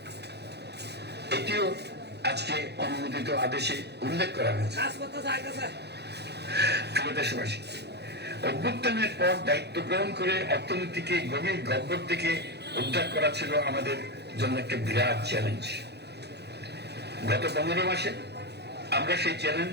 এটিও আজকে অনুমোদিত আদেশে উল্লেখ করা হয়েছে। প্রিয় দেশবাসী, অভ্যুত্থানের পর দায়িত্ব গ্রহণ করে অর্থনীতিকে গভীর গহ্বর থেকে উদ্ধার করা ছিল আমাদের জন্য একটা বিরাট চ্যালেঞ্জ। গত 15 মাসে আমরা সেই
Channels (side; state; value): left; late; 0.48 ms